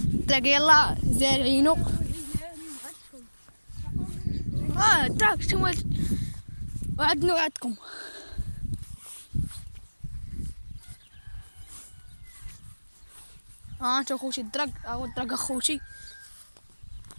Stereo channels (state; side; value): inverted; both; correlation -1.00